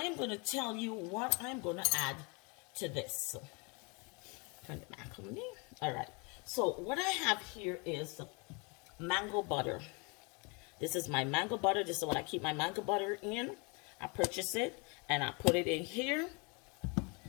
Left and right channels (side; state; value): right; quieter; 31.5 dB